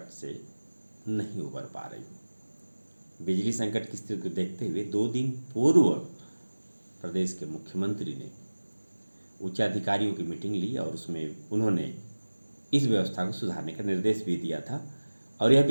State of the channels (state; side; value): inverted; both; correlation -1.00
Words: से नहीं उबर पा रही। बिजली संकट की स्थिति को देखते हुए 2 दिन पूर्व प्रदेश के मुख्यमंत्री ने उच्च अधिकारियों की मीटिंग ली और उसमें उन्होंने इस व्यवस्था को सुधारने का निर्देश भी दिया था। और यह